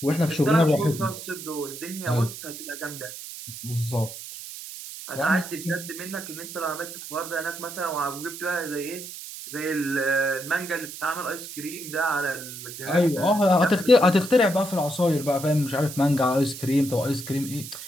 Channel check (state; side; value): noise; right; hiss, 11 dB below the sound